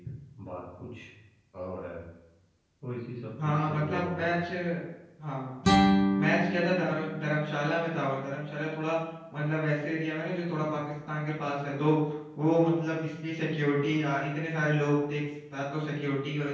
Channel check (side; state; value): both; identical; correlation 1.00